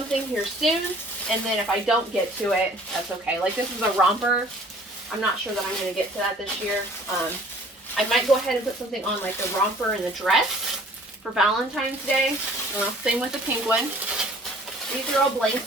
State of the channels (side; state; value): both; normal; correlation 0.52